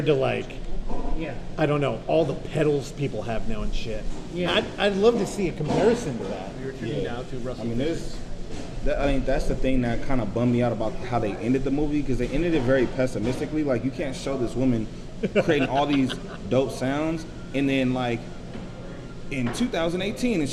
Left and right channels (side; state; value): both; identical; correlation 1.00